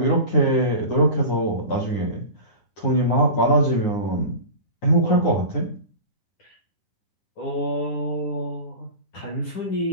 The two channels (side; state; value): right; late; 9.6 ms